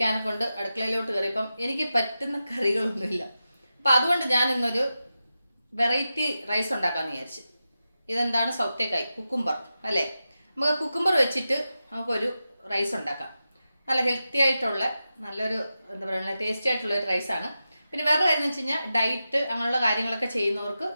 കൊണ്ട് അടുക്കളയിലോട്ട് കയറിയപ്പം എനിക്ക് പറ്റുന്ന കറികളൊന്നുമില്ല. അപ്പം അതുകൊണ്ട് ഞാൻ ഇന്നൊരു വെറൈറ്റി റൈസ് ഉണ്ടാക്കാമെന്ന് വിചാരിച്ചു. ഇതെന്താണ്? സൗത്തേക്കായ് കുക്കുംബർ അല്ലേ? നമുക്ക് കുക്കുംബർ വെച്ചിട്ട് നമുക്കൊരു റൈസ് ഉണ്ടാക്കാം. നല്ല ഹെൽത്തി ആയിട്ടുള്ള നല്ലൊരു എന്താ പറയുക ടേസ്റ്റി ആയിട്ടുള്ള ഒരു റൈസാണ്. പിന്നെ വേറെ കാര്യം എന്ന് വെച്ച് കഴിഞ്ഞാൽ ഡയറ്റ് അങ്ങനെയുള്ള കാര്യങ്ങളൊക്കെ ചെയ്യുന്നവർക്ക്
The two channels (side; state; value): both; inverted; correlation -0.91